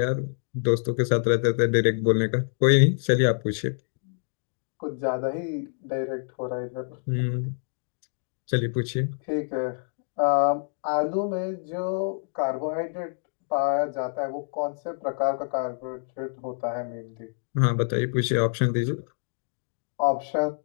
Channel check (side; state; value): right; silent; digital silence